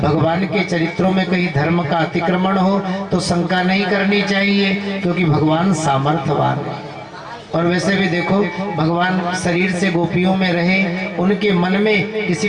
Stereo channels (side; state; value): both; identical; correlation 1.00